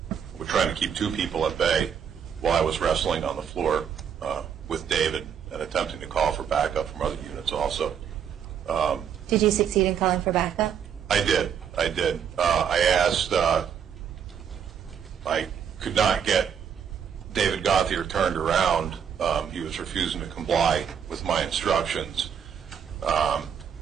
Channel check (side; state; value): left; quieter; 7.9 dB